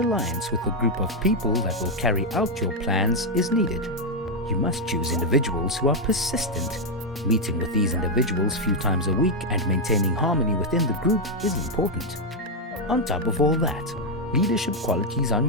with a group of people that will carry out your plans is needed. You must choose individuals who are persistent. Meeting with these individuals few times a week and maintaining harmony within the group is important. On top of all that, leadership qualities on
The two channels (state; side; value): normal; both; correlation 0.02